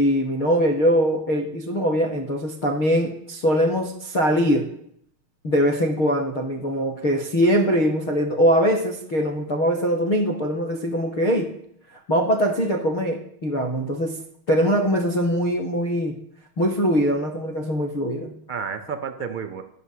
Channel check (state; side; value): late; right; 6.4 ms